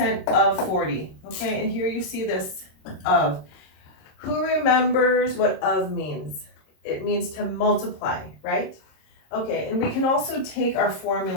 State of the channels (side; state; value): right; late; 26 ms